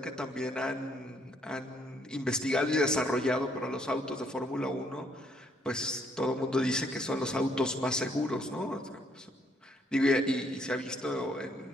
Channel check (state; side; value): normal; both; correlation 0.68